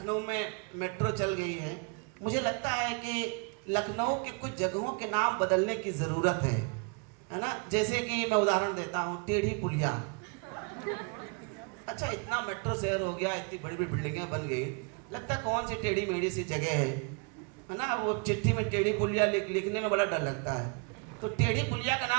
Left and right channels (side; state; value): left; quieter; 34.7 dB